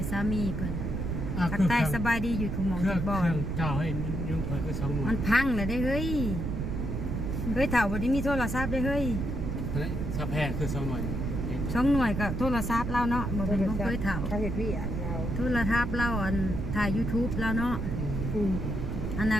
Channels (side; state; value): right; noise; rumble, 2 dB below the sound